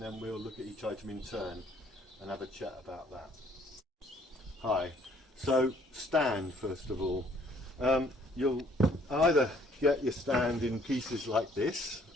we'll look at each item in turn and have a chat about that. Hi, so stand first of all. You'll either get your stand in pieces like this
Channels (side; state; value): both; normal; correlation 0.62